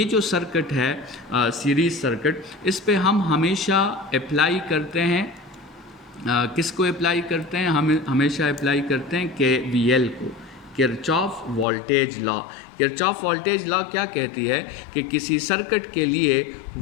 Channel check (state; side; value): drops out; right; at 11.7 s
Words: जो सर्किट है सीरीज़ सर्किट, इस पे हम हमेशा अप्लाई करते हैं किसको अप्लाई करते हैं? हम हमेशा अप्लाई करते हैं KVL को, Kirchhoff voltage law. Kirchhoff voltage law क्या कहती है कि किसी सर्किट के लिए